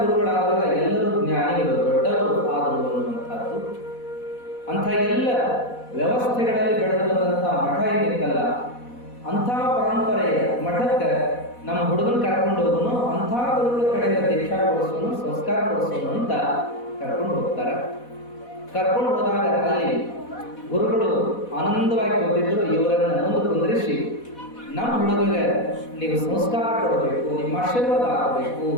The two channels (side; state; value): right; late; 4.1 ms